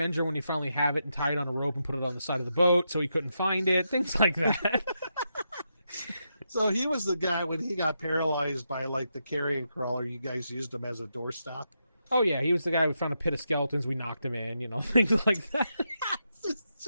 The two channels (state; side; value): inverted; both; correlation -0.84